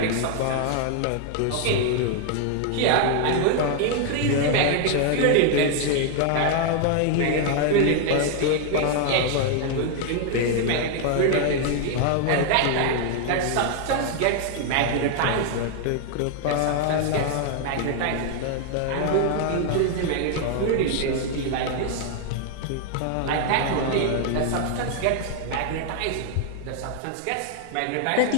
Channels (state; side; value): different; both; correlation 0.00